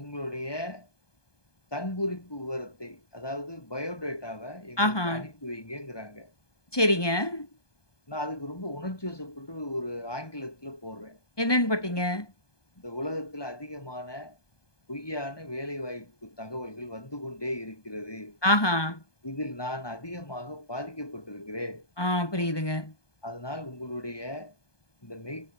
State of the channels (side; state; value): right; late; 1.2 ms